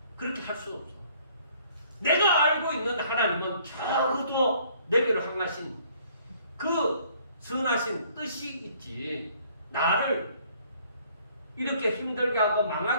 그렇게 할 수 없어. 내가 알고 있는 하나님은 적어도 내게로 향하신 그 선하신 뜻이 있지. 나를 이렇게 힘들게 하고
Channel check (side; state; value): both; inverted; correlation -0.60